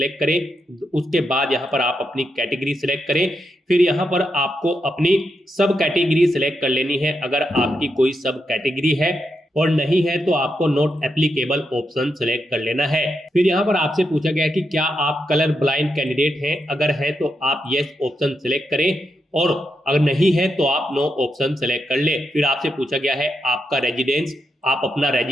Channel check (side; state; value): both; normal; correlation 0.83